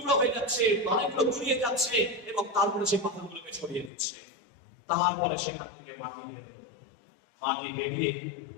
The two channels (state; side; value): drops out; right; at 3.9 s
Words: হয়ে যাচ্ছে, অনেকগুলো গুড়িয়ে যাচ্ছে, এবং তারপরে সেই পাথরগুলোকে সরিয়ে দিচ্ছে। তারপরে সেখান থেকে মাটি বের হলো, মাটি বেরিয়ে